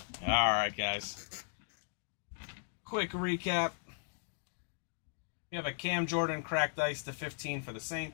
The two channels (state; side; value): silent; right; digital silence